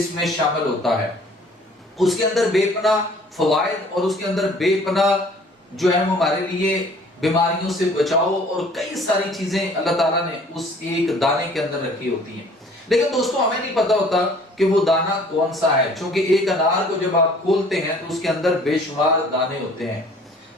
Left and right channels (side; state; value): both; normal; correlation 0.53